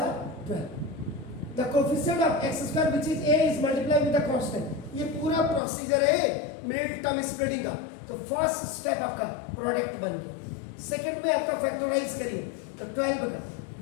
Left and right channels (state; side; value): drops out; right; at 5.6 s